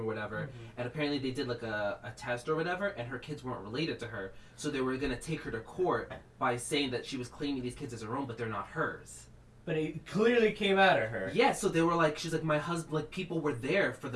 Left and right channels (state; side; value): identical; both; correlation 1.00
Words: whatever. And apparently they did like a test or whatever, and her kids weren't related to her, so they were gonna take her to court by saying that she was claiming these kids as her own, but they're not hers. But it clearly came out of her. Yeah, so they were like, she's like, my husband, like, people were there for